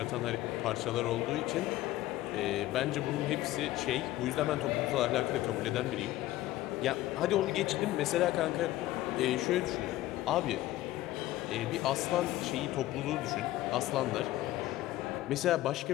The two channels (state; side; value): quieter; right; 15.8 dB